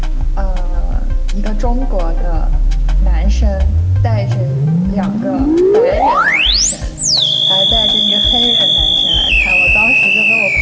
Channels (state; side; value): identical; both; correlation 1.00